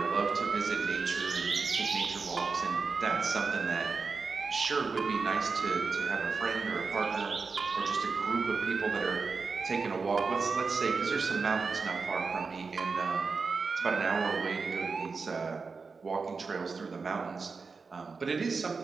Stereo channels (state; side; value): quieter; left; 4.7 dB